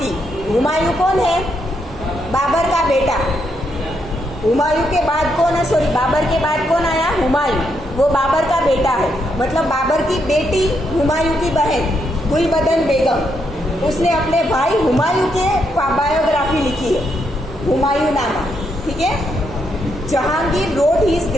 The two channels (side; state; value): both; normal; correlation 0.78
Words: हुमायूं कौन है? बाबर का बेटा। हुमायूं के बाद कौन है? सॉरी, बाबर के बाद कौन आया? हुमायूं। वो बाबर का बेटा है, मतलब बाबर की बेटी हुमायूं की बहन गुलबदन बेगम, उसने अपने भाई हुमायूं के बायोग्राफी लिखी है, हुमायूं नामा। ठीक है, Jahangir wrote his